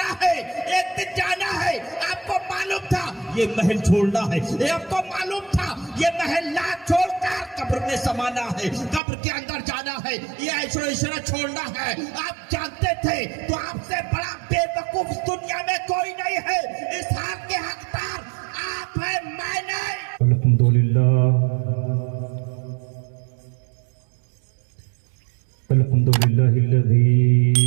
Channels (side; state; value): left; drops out; at 9.0 s